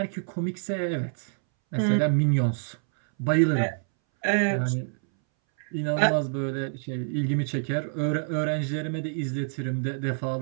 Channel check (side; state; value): left; silent; 60 dB below the other